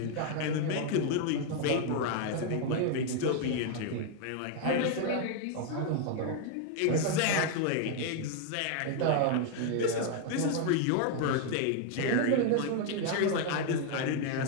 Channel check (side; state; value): both; different; correlation 0.00